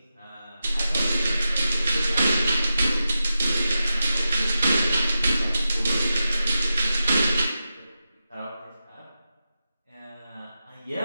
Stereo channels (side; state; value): both; inverted; correlation -0.91